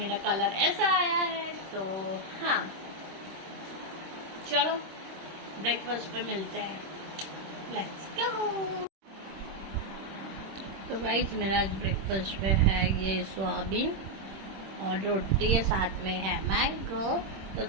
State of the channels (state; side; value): late; left; 26 ms